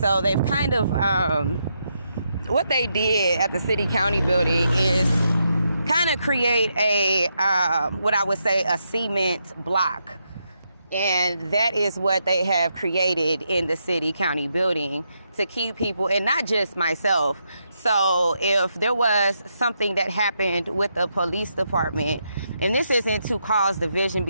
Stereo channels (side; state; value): both; inverted; correlation -0.81